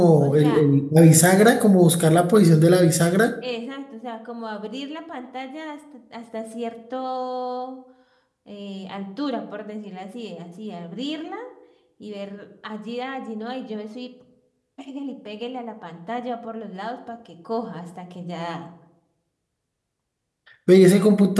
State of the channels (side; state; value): both; identical; correlation 1.00